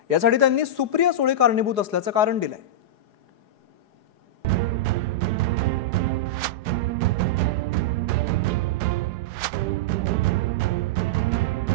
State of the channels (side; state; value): left; late; 4.8 ms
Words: यासाठी त्यांनी सुप्रिया सुळे कारणीभूत असल्याचं कारण दिलंय।